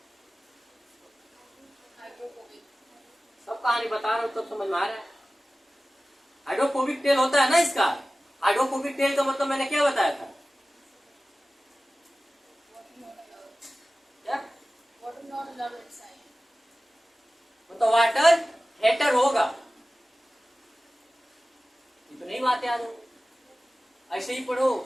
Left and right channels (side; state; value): both; normal; correlation 0.96